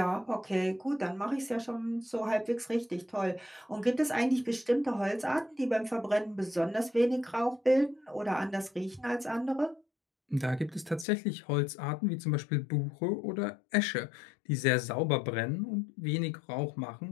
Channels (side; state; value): right; drops out; at 11.1 s